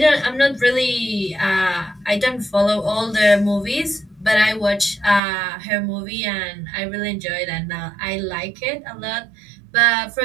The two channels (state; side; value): drops out; left; at 5.2 s